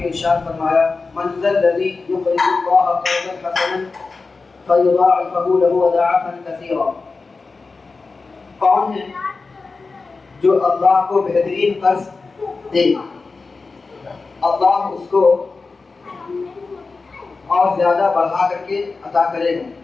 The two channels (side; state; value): right; quieter; 4.1 dB